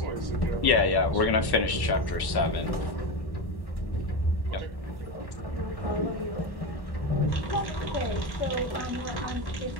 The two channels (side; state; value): right; late; 1.1 ms